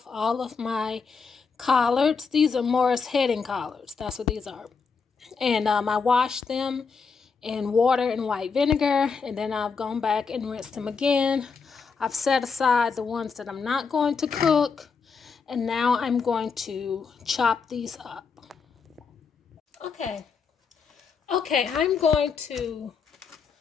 all of my collards. These are Morris heading collards. That's what these are. And I washed them in water and white vinegar, and then I've gone back and rinsed them again. I've set aside the ones that I'm not going to cook, and now I'm going to chop these up. Okay, I'm going to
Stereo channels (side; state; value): right; quieter; 5.4 dB